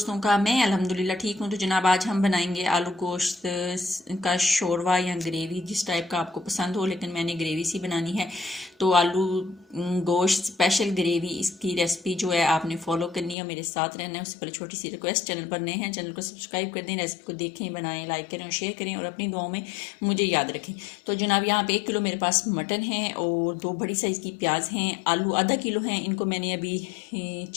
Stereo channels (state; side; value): drops out; right; at 13.4 s